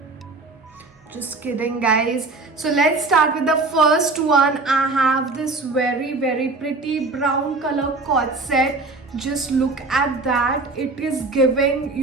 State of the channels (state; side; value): quieter; left; 3.5 dB